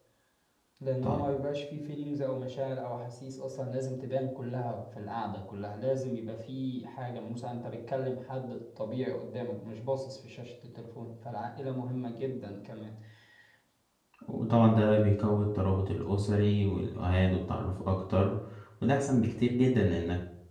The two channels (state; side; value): identical; both; correlation 1.00